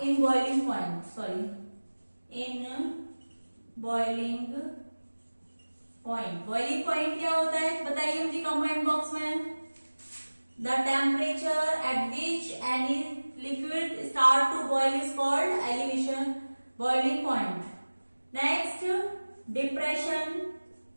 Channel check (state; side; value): inverted; both; correlation -1.00